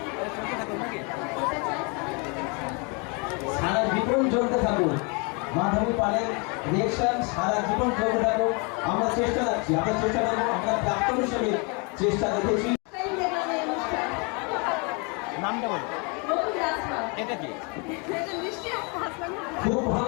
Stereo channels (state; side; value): quieter; right; 32.6 dB